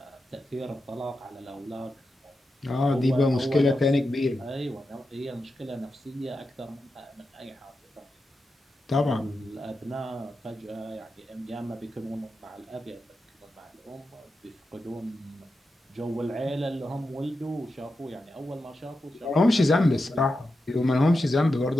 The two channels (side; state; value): both; normal; correlation 0.89